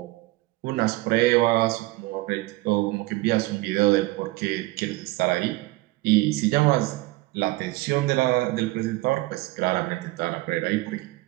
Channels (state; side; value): quieter; left; 20.4 dB